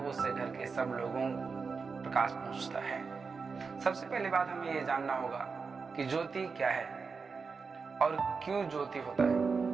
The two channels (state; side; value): quieter; left; 5.0 dB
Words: उससे घर के सब लोगों प्रकाश पहुंचता है। सबसे पहली बात हमें यह जानना होगा कि ज्योति क्या है और क्यों ज्योति होता है,